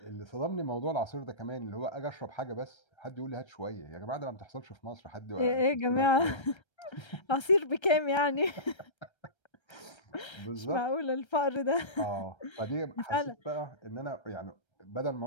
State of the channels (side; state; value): right; late; 1.3 ms